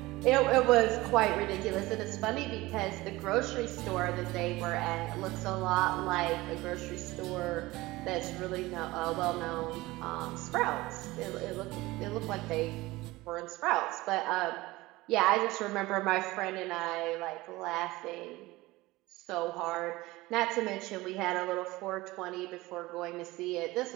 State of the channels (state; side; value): quieter; left; 19.8 dB